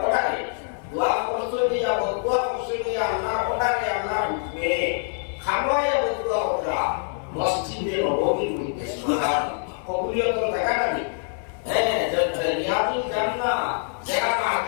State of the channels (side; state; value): right; silent; 59 dB below the other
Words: পড়ায় দোয়া করছই দিয়া দোয়া করছই দিয়া আল্লাহ পড়ায় আল্লাহ হুকমে খামায়া দোয়া করা মসজিদে নববীর মধ্যে সুবহানাল্লাহ কবুলিয়তের জায়গাটা নেই। হ্যাঁ রিয়াজুল জান্নাহ যেখানে